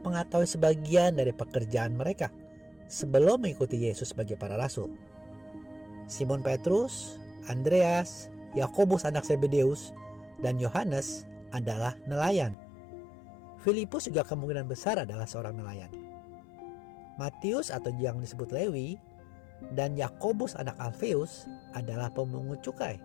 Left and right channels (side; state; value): right; drops out; at 12.6 s